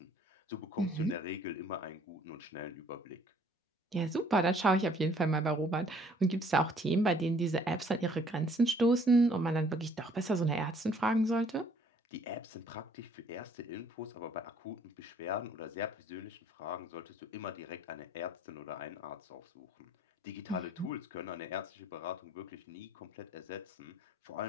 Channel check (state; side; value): normal; both; correlation 0.60